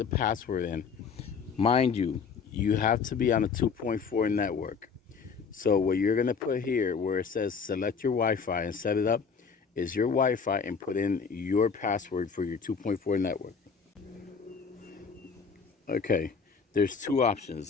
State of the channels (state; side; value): quieter; right; 5.8 dB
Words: password in. Mind you, you have to be on a 2.4 network. So what you're gonna put here where it says select your Wi-Fi and set it up is your Wi-Fi and put in your password for your 2.4 network. Okay, there's two